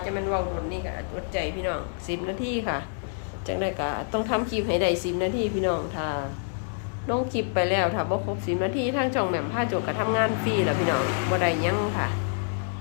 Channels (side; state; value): right; silent; digital silence